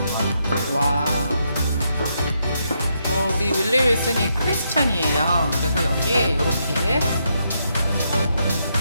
와. 우리 윌리 윌슨이 크리스찬이에요. 그래서 여기에 이렇게 있네요.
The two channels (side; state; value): both; inverted; correlation -0.79